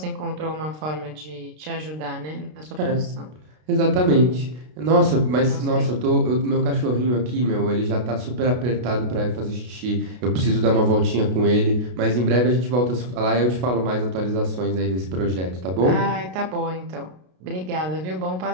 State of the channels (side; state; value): left; late; 33 ms